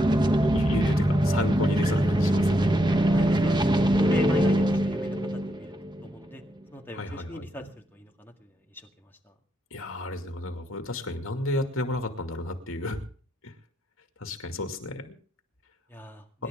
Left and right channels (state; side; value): normal; both; correlation 0.80